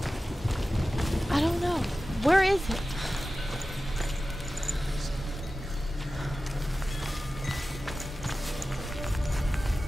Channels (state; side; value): normal; both; correlation 0.95